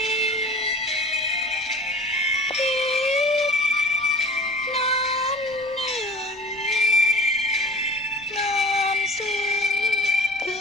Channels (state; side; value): normal; both; correlation 0.43